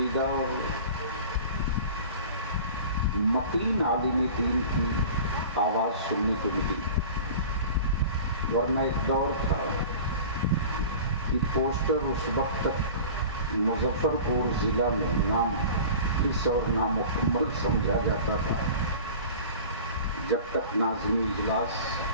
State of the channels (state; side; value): inverted; both; correlation -0.39